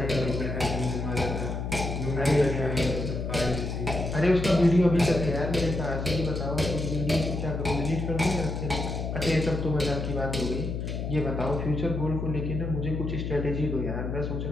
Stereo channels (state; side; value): noise; left; hum, 3 dB below the sound